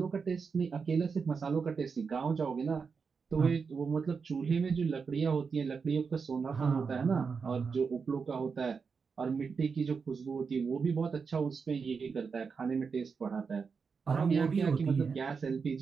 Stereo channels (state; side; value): quieter; left; 5.4 dB